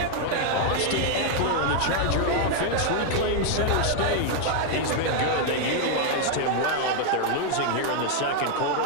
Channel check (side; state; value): both; different; correlation 0.00